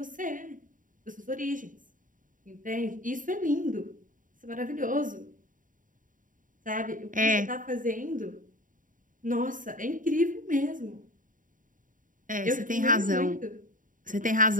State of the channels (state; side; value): late; left; 0.39 ms